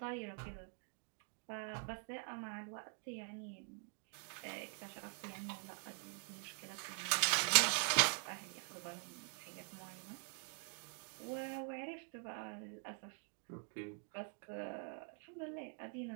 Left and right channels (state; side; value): quieter; left; 39.5 dB